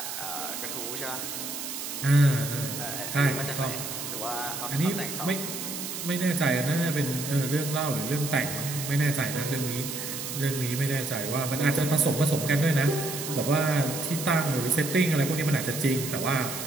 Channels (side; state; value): right; noise; hiss, 6 dB below the sound